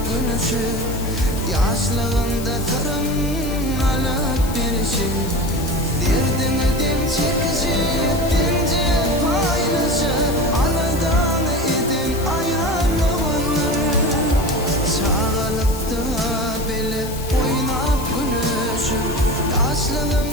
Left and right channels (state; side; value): noise; left; hiss, 12 dB below the sound